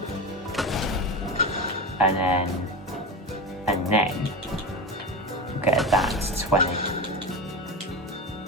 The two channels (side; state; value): both; normal; correlation 0.22